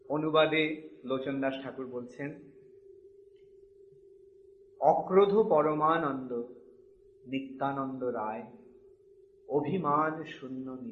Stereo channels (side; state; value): both; identical; correlation 1.00